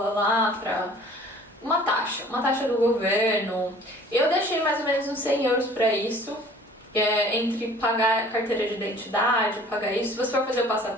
lá pra uma taxa do governo. Eu deixei mais ou menos uns 100 euros pra isso. Entre pagar a carteira de identidade, pagar isso. Se você for fazer o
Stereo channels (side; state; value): both; normal; correlation 0.50